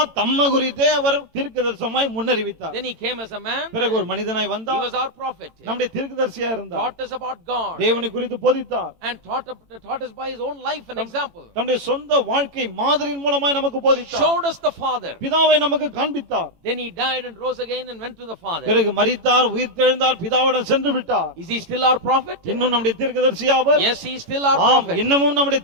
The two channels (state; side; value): late; left; 18 ms